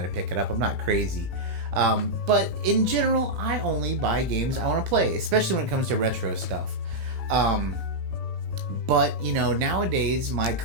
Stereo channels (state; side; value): late; left; 18 ms